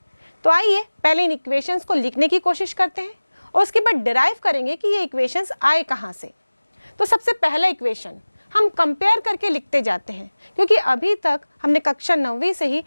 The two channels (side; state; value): both; inverted; correlation -1.00